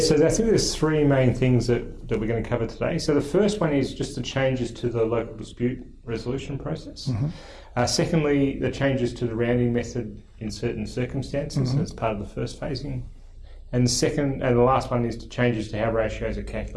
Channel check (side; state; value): both; identical; correlation 1.00